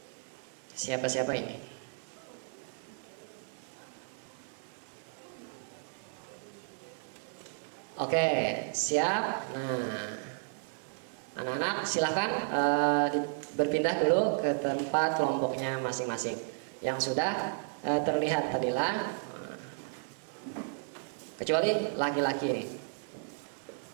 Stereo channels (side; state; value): left; silent; 56 dB below the other